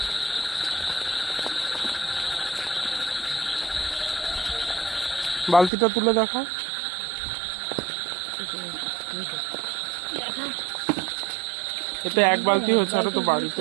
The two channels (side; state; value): left; drops out; at 5.7 s